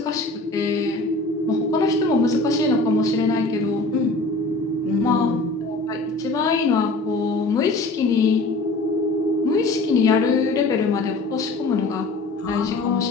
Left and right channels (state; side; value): quieter; right; 3.1 dB